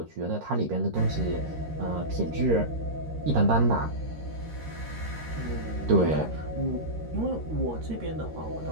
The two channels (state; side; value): late; left; 13 ms